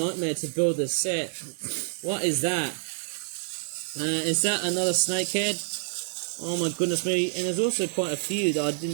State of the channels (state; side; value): silent; left; digital silence